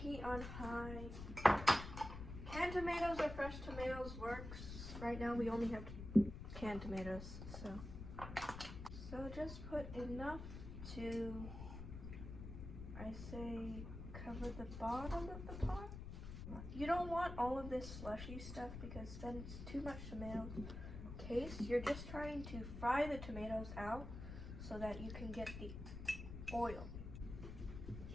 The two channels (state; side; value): noise; left; rumble, 8 dB below the sound